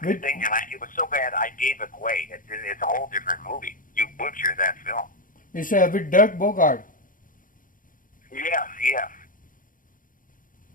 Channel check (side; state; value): right; late; 0.39 ms